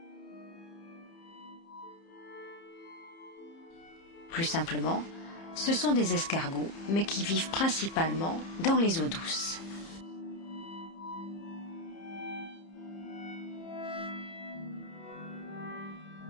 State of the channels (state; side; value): late; right; 30 ms